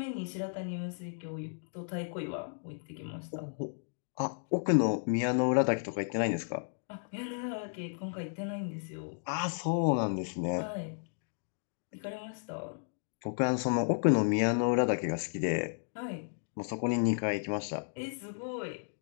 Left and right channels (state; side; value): silent; right; digital silence